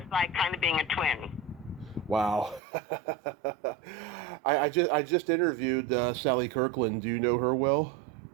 like kind of being a twin. Wow. I just interviewed Sally Kirkland. Do you know her well?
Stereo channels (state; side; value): drops out; left; at 2.6 s